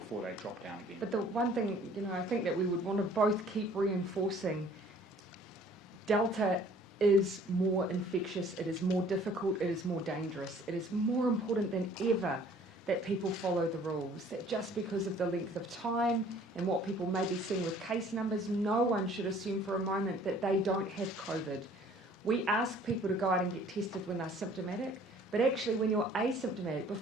they drop down again. But the one thing, I think that we would want to both keep reinforcing, Delta is more infectious, it is more difficult, it is more dangerous. It is more important than ever that people follow the rules, that just because of the length of time and what people may be seeing with case numbers, no one should assume for a moment that they don't have COVID. We ask people to go out and get tested when they're symptomatic, but actually when you're asymptomatic,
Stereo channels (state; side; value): normal; both; correlation 0.54